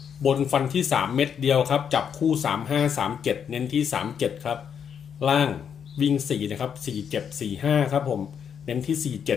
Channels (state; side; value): quieter; right; 7.7 dB